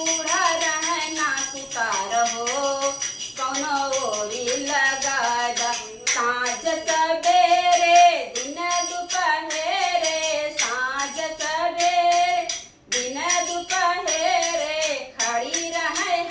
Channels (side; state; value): both; identical; correlation 1.00